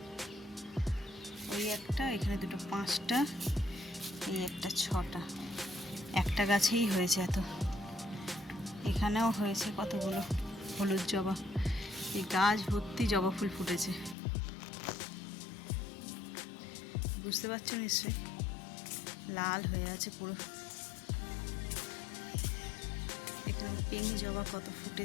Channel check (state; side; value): drops out; right; at 14.2 s